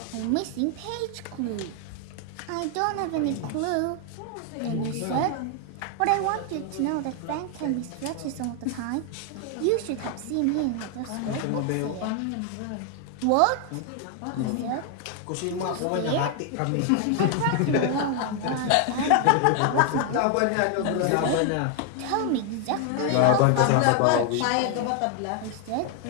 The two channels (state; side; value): different; both; correlation 0.00